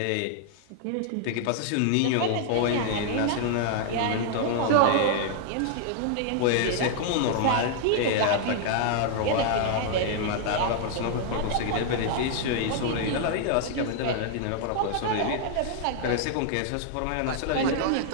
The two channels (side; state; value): both; different; correlation -0.01